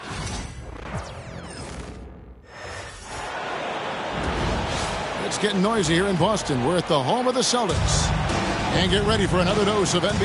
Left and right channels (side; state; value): both; identical; correlation 1.00